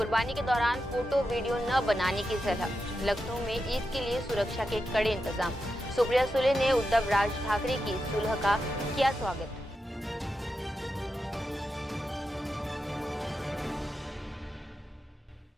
के दौरान फोटो वीडियो न बनाने की सलाह। लखनऊ में ईद के लिए सुरक्षा के कड़े इंतजाम। सुप्रिया सुले ने उद्धव राज ठाकरे की सुलह का किया स्वागत।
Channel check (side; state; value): both; normal; correlation 0.88